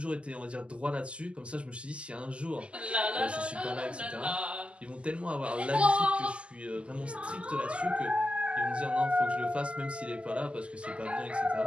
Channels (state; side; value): late; left; 0.055 ms